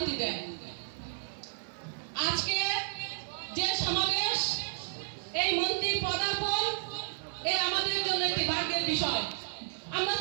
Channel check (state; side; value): silent; left; 56 dB below the other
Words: দেন। আজকে যে সমাবেশ, এই মন্ত্রীর পদার্পণ, এ আমাদের জন্য একটি ভাগ্যের বিষয়। আমরা